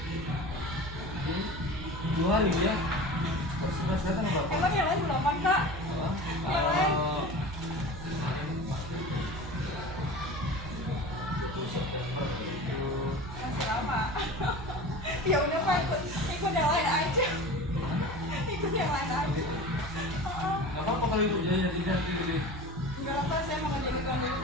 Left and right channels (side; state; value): right; noise; hum, 10 dB below the sound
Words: Jadi 2 hari ya. Terus sekarang berapa? Emang yang lain belum Pak? Yang lain? 20 September itu. Masih lama. Ya udah Pak, ikut yang lain aja. Ikut yang lain aja. Nggak apa-apa kalau ibu jadi nanti Enggak apa, saya mau jadi tuan dulu